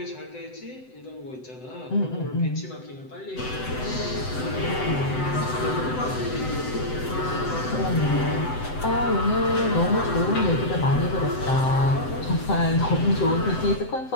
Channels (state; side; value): late; right; 7.9 ms